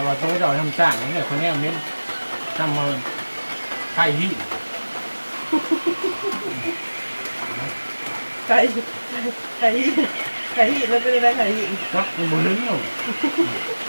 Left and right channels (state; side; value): inverted; both; correlation -1.00